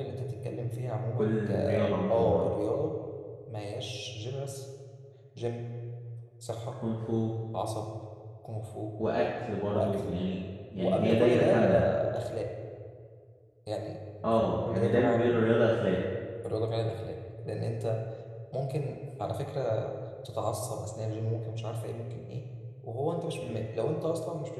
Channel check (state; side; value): identical; both; correlation 1.00